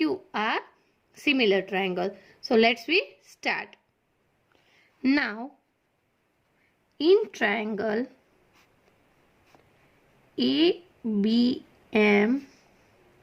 are similar triangle. So let's we start. Now in triangle ABM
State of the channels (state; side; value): identical; both; correlation 1.00